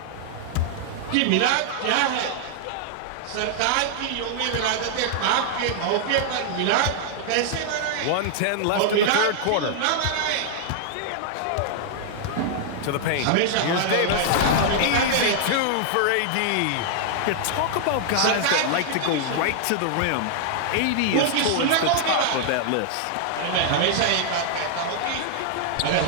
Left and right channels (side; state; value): both; different; correlation -0.01